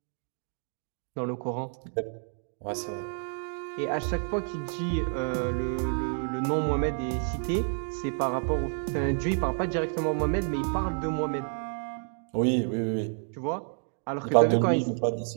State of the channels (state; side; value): silent; left; 56 dB below the other